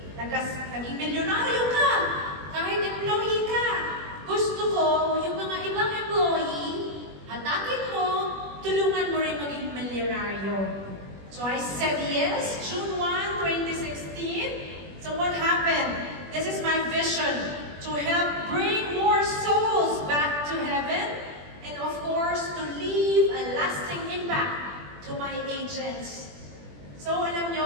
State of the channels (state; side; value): late; left; 21 ms